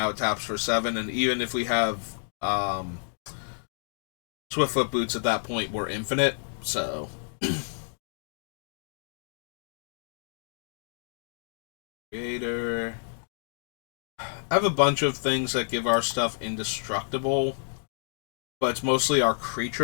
it taps for 7, and even if we have Swiftfoot boots at that point, we're infinite, so Creator. I have a bunch of things that give our stuff indestructible, but it's mostly our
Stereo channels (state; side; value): silent; right; digital silence